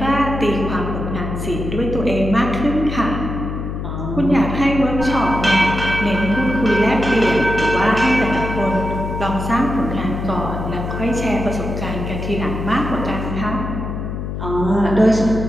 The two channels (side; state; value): left; noise; hum, 5 dB below the sound